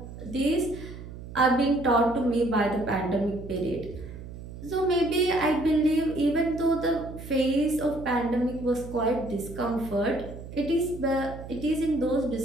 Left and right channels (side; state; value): right; noise; hum, 13 dB below the sound